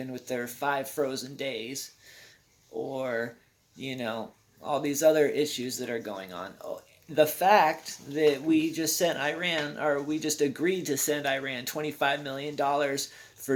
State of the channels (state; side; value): identical; both; correlation 1.00